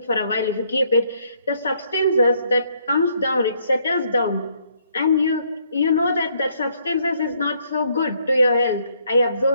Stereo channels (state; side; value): inverted; both; correlation -0.69